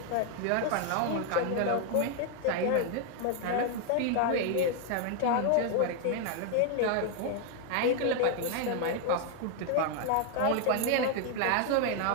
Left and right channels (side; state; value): both; different; correlation 0.00